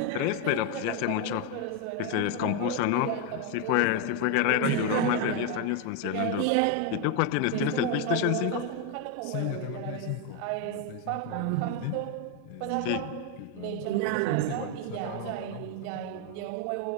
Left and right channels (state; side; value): different; both; correlation 0.01